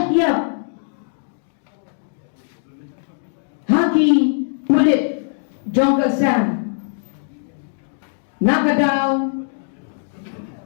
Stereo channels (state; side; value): silent; right; digital silence